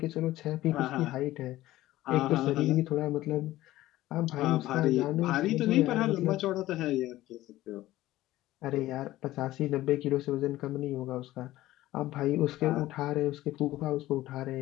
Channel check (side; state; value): right; quieter; 16.0 dB